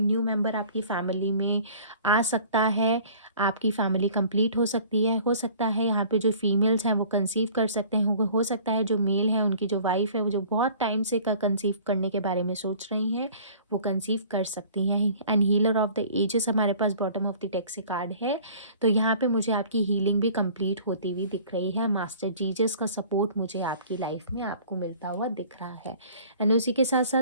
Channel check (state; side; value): inverted; both; correlation -0.49